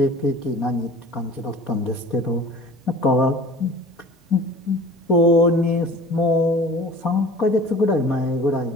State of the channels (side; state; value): both; normal; correlation 0.44